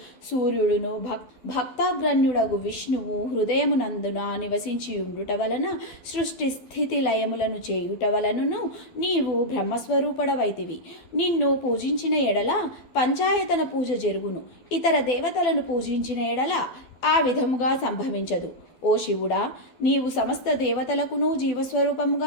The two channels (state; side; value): late; right; 12 ms